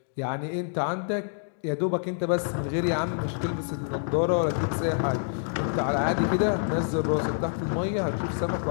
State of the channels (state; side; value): silent; right; digital silence